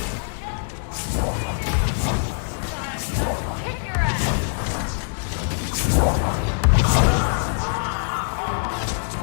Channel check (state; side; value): silent; right; 63 dB below the other